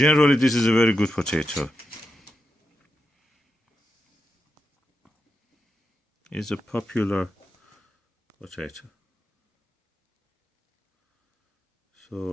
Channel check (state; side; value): normal; both; correlation 0.87